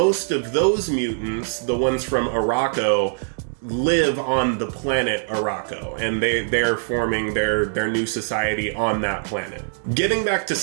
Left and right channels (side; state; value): left; silent; digital silence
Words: of those mutants, the ones from Arakko, live on the planet KRAKOA, and they're forming their new society on that planet. Getting back to